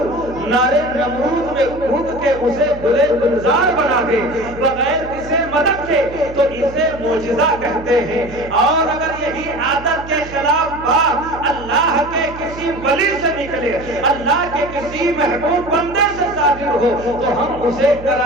نارے نمرود میں کود کے اسے گلے گلزار بنا دے بغیر کسی مدد کے، تو اسے معجزہ کہتے ہیں۔ اور اگر یہی عادت کے خلاف بات اللہ کے کسی ولی سے نکلے، اللہ کے کسی محبوب بندے سے صادر ہو، تو ہم اسے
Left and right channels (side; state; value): right; noise; hum, 15 dB below the sound